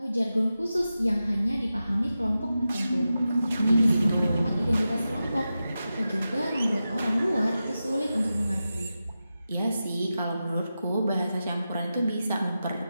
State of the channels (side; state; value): both; inverted; correlation -0.92